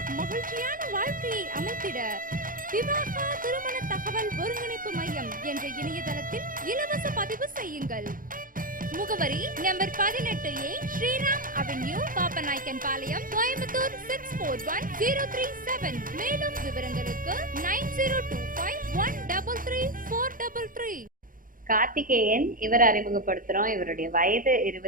மகிழ்ச்சியான வாழ்க்கையை அமைத்திட விவாகா திருமண தகவல் ஒருங்கிணைப்பு மையம் என்ற இணையதளத்தில் இலவச பதிவு செய்யுங்கள். முகவரி number 18A Sriram avenue, Pappanaickenpalayam, Coimbatore 641037. மேலும் விவரங்களுக்கு 9025133433. கார்த்திகேயன் இவர் அறிமுகப்படுத்துறோம். இவருடைய வயது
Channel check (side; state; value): left; late; 0.40 ms